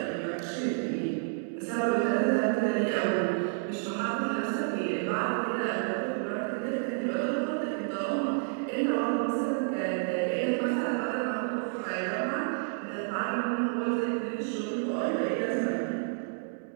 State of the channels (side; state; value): left; silent; digital silence